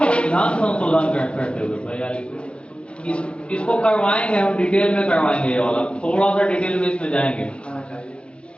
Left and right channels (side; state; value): right; late; 0.058 ms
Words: संशोधन करते हुए। 42 इसको करवाएंगे हम, डिटेल में करवाएंगे ये वाला, थोड़ा सा डिटेल में इसमें जाएंगे।